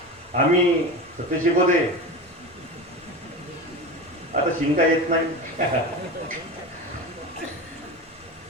आम्ही सत्य शिकवते, आता शिंका येत नाही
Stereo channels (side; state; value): both; normal; correlation 0.26